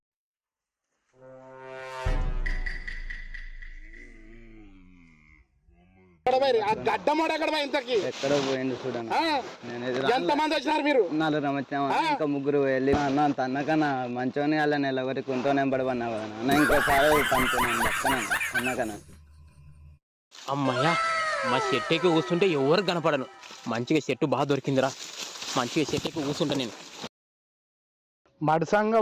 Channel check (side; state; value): both; identical; correlation 1.00